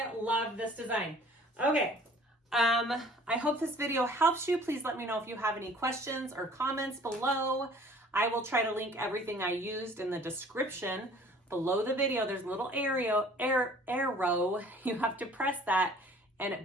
love this design. Okay, I hope this video helps you. Please let me know if you have any questions or comments below. I will try to link everything I used in the description below the video. There's a little arrow. You have to press that, and it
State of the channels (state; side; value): normal; both; correlation 0.51